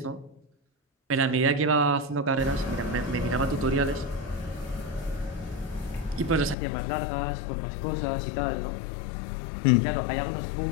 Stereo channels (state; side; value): drops out; right; at 6.6 s